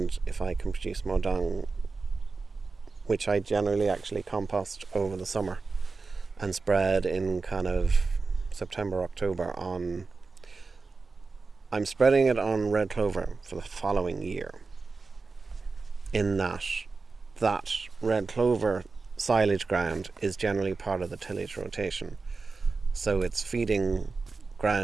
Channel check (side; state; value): left; quieter; 4.1 dB